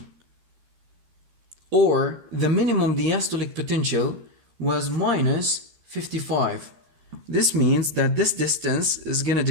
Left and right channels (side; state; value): left; late; 13 ms